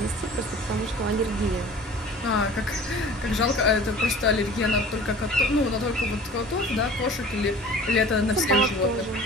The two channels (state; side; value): normal; both; correlation 0.43